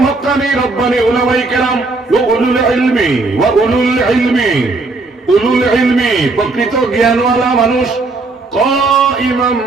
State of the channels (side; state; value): left; quieter; 3.5 dB